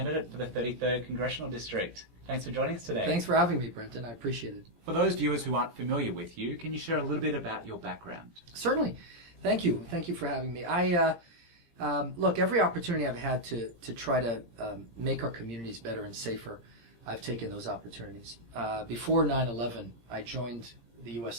for the 33rd Congressional District. Thanks for joining us today. Thanks for having me, Brenton. I appreciate it. For those viewers who aren't familiar with you, can you share a little bit about your background? Certainly. Thank you. Thank you for having me. Look, every opportunity I've had to try to make our communities better and safer, I've taken those opportunities. Before 9/11, I joined the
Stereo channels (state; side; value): late; left; 17 ms